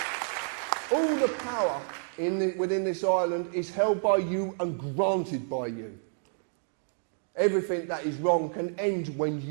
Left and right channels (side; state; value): left; silent; digital silence